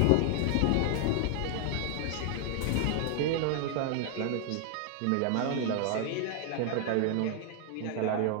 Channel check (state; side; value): different; both; correlation 0.00